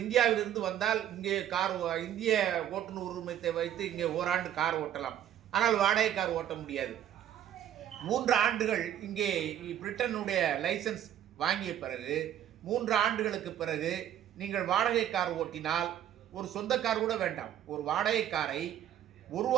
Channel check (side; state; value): left; quieter; 11.0 dB